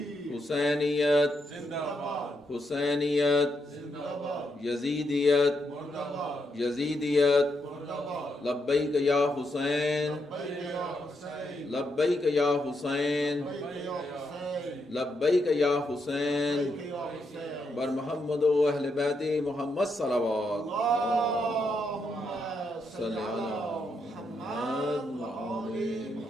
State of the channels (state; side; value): normal; both; correlation 0.80